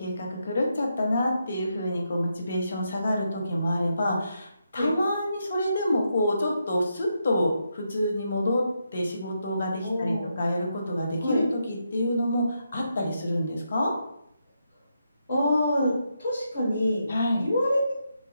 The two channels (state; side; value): inverted; both; correlation -0.82